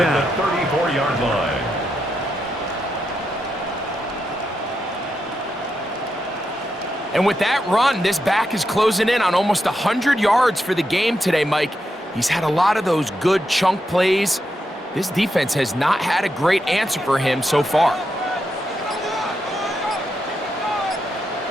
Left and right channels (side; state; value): both; normal; correlation 0.84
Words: 34-yard line. And with that run, this back is closing in on almost 100 yards for the game today, Mike. He's had a lot of those good chunk plays. This defense has not had a great answer for him so far.